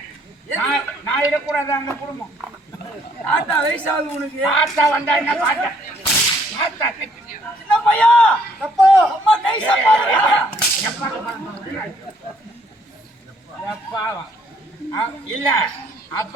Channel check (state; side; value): normal; both; correlation 0.65